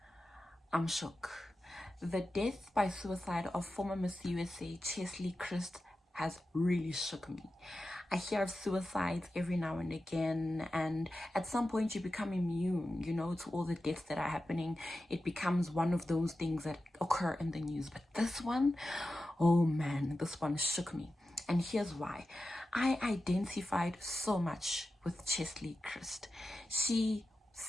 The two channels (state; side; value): normal; both; correlation 0.92